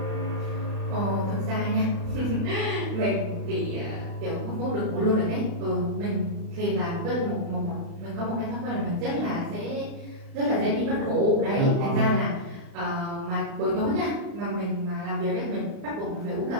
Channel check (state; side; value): late; left; 36 ms